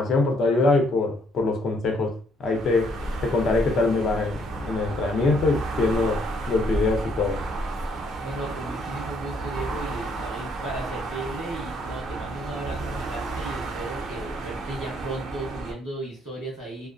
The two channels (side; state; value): both; normal; correlation 0.69